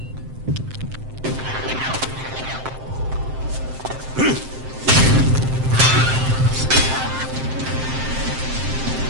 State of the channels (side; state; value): left; late; 7.7 ms